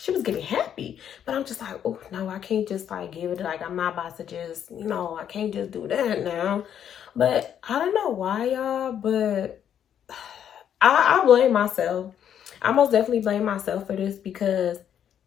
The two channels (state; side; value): quieter; right; 9.3 dB